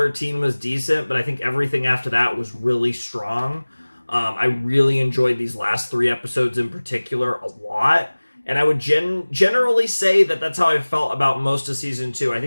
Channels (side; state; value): both; inverted; correlation -1.00